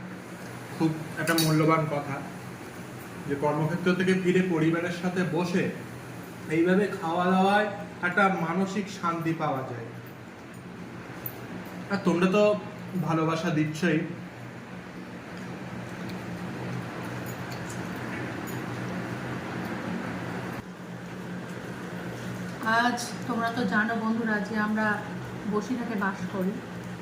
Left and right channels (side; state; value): both; identical; correlation 1.00